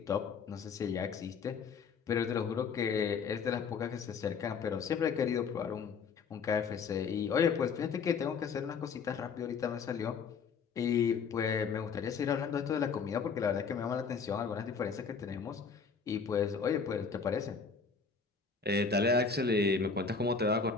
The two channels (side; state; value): right; quieter; 5.5 dB